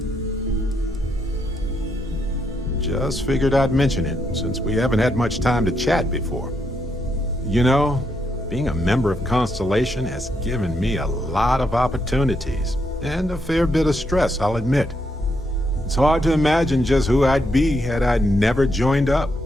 Just figured I'd mention it, since we haven't had much time to chat before. You know, being a member of Constellation has given me a lot of opportunities, and a fair bit of stress, I'll admit. It's hard to imagine just who I'd be had I never joined up.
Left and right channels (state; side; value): normal; both; correlation 0.78